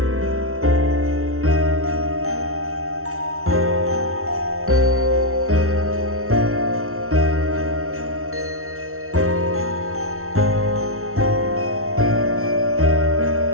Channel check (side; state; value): left; late; 0.63 ms